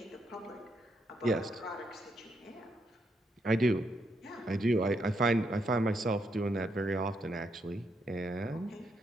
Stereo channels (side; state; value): both; normal; correlation 0.78